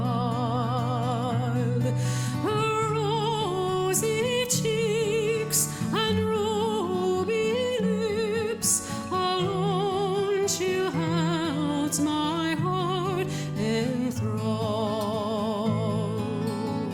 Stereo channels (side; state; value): both; identical; correlation 1.00